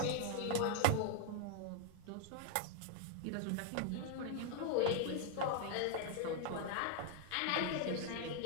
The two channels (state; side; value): different; both; correlation 0.00